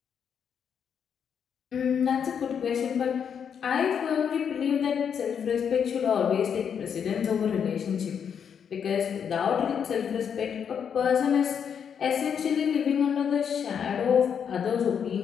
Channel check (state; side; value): quieter; right; 7.6 dB